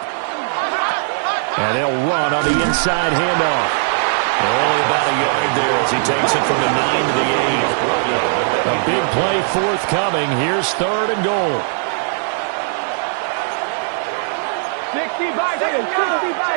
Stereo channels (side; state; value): left; silent; 67 dB below the other